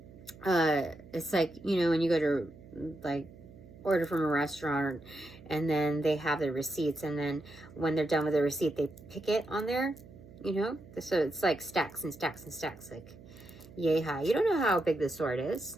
it's like, you know, when you go to like order from a restaurant and then they have the receipts, and then when they're done with the receipt, they pick it on there, you know? So it's like stacks and stacks and stacks, like yay high. You don't know how big this sword is.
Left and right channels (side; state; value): right; noise; hum, 20 dB below the sound